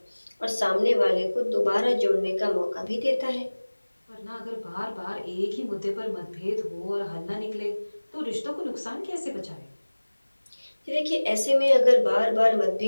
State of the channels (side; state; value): both; inverted; correlation -1.00